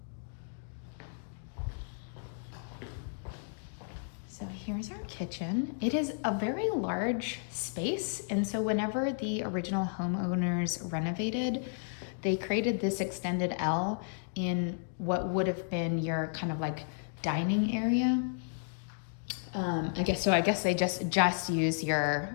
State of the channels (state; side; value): silent; right; digital silence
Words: So here's our kitchen. It is a very large space. And so whenever the original homeowners renovated, they created this extended L in what would have been your kind of like dining area. I guess they just use